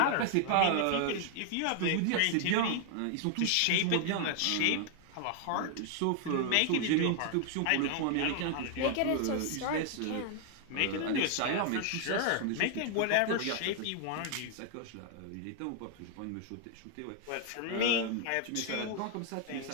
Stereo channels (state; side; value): different; both; correlation 0.00